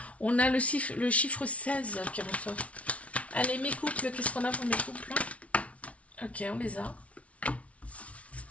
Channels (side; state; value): right; late; 0.064 ms